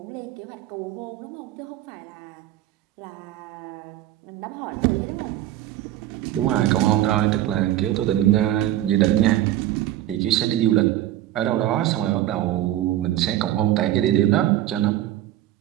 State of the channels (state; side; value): quieter; left; 13.4 dB